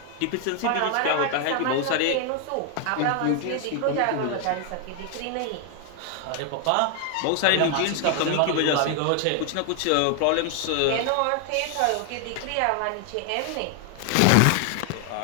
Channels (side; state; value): both; different; correlation 0.00